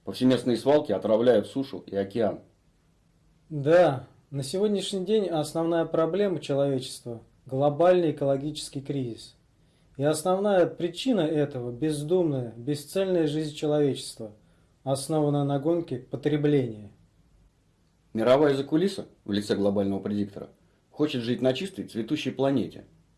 Повсеместные свалки отравляют сушу и океан. Да, на сегодняшний день основная проблема человечества – глобальный экологический кризис. И основная причина этого – бездумная, бесцельная жизнь человечества, основанная на гонке потребления. Мировая закулиса в лице глобального предиктора хочет жить на чистой цветущей планете.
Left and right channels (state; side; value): identical; both; correlation 1.00